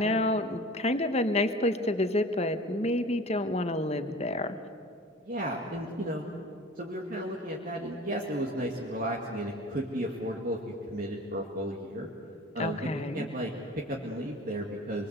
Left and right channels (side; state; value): both; normal; correlation 0.41